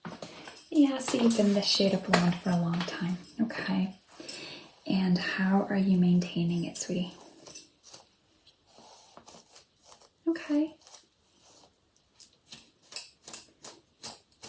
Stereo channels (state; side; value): identical; both; correlation 1.00